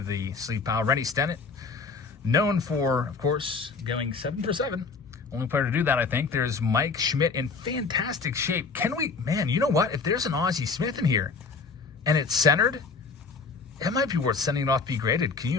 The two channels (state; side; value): quieter; right; 4.6 dB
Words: sleep pile. Rennie Stennett. Known for, of course, going 7 for 7. Only player to do that, I think. There's Mike Schmidt in fantastic shape. Can we, man, you know what? If there's an Ozzie Smith in here and it's centered, it might be worth sending it off to be graded. Can you